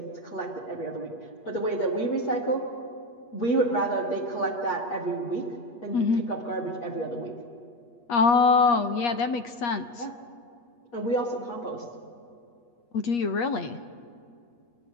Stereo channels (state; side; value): late; right; 8.4 ms